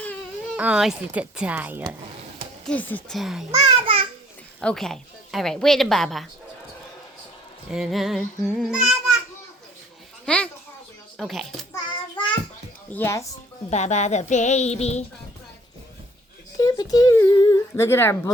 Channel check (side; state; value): both; normal; correlation 0.59